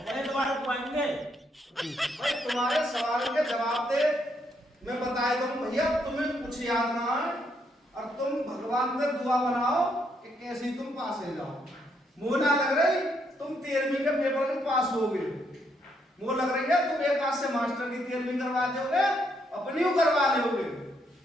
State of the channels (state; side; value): normal; both; correlation 0.75